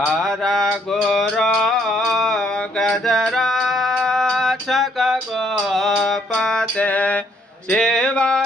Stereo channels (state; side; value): normal; both; correlation 0.68